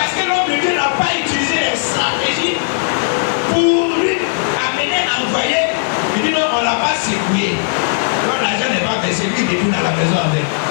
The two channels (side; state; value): right; silent; 55 dB below the other